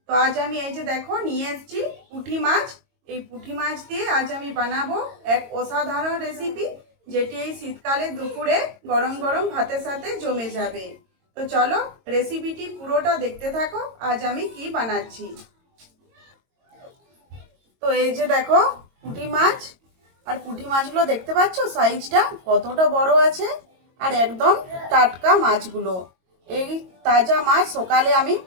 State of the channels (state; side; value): late; left; 22 ms